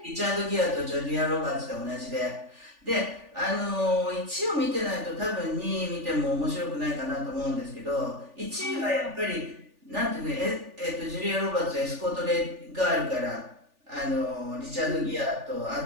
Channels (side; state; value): left; late; 3.4 ms